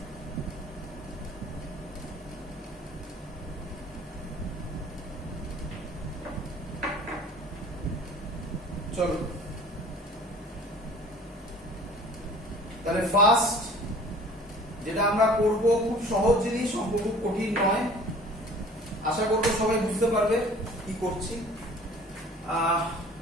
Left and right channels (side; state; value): both; normal; correlation 0.48